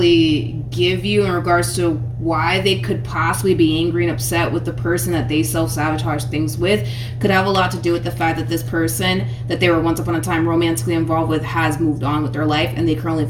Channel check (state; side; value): identical; both; correlation 1.00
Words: give you in regards to why they could possibly be angry and upset with the person that they self-sabotage things with could have a lot to do with the fact that this person that they were once upon a time romantically involved with has moved on with their life, and they currently